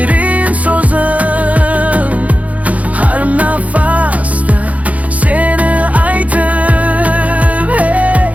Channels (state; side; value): late; left; 0.069 ms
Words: so'zim, har nafasda seni aytib. Hey